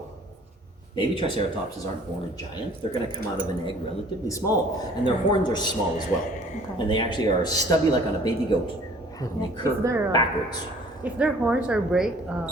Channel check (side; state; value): both; normal; correlation 0.53